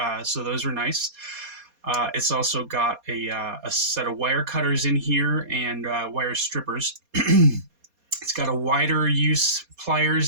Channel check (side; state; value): left; late; 4.2 ms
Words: So those are nice. It's also got a set of wire cutters in here and wire strippers. It's got a wider use